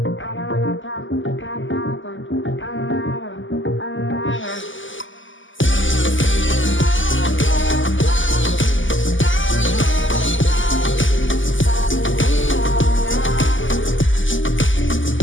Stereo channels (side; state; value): right; late; 0.56 ms